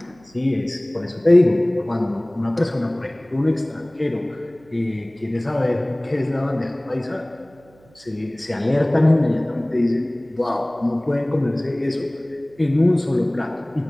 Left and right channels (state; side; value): noise; right; hum, 29 dB below the sound